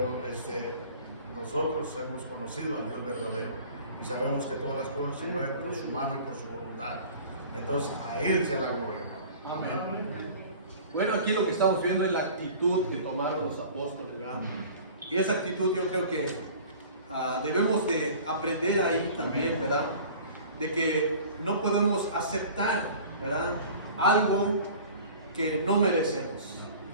nosotros hemos conocido al Dios verdadero y sabemos que todas las cosas se mueven por su mano y por su voluntad. Entonces, a Él sea la gloria, hermano. Amén. Bueno, aquí lo que estamos viendo es la actitud que tomaron los apóstoles, ¿verdad? Y esa actitud yo creo que debemos de aprender ahí también, ¿verdad? De que no podemos aceptar, ¿verdad?, algo que no merecemos,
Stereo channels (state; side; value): inverted; both; correlation -0.44